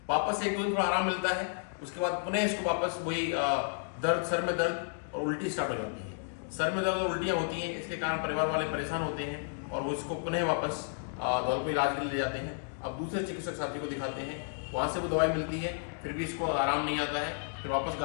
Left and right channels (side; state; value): right; silent; digital silence